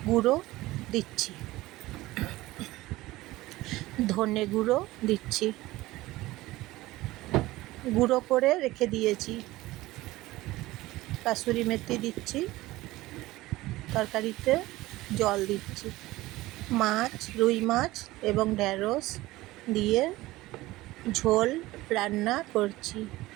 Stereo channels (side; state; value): left; quieter; 18.3 dB